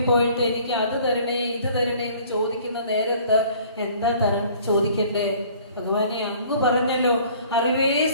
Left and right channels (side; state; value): both; inverted; correlation -0.53